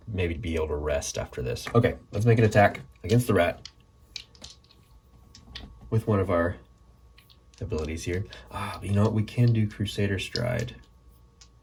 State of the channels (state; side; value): identical; both; correlation 1.00